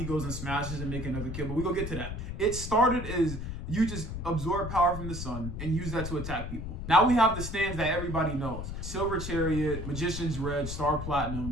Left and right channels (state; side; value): noise; left; rumble, 6 dB below the sound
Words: goes and smashes and make another kid. But we go get to that. It started as you just absorb power from the sun and use that to attack people. Now we have the stands that everybody knows. Silver Chariot, Magician's Red, Star